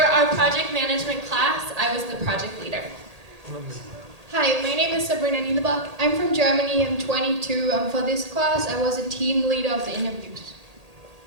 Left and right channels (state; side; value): late; left; 1.8 ms